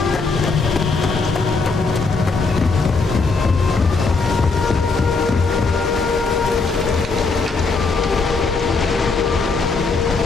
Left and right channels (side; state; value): right; quieter; 4.2 dB